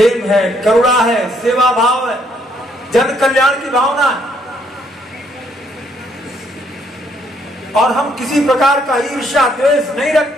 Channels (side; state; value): both; normal; correlation 0.69